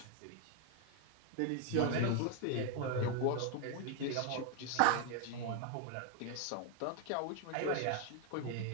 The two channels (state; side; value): different; both; correlation 0.00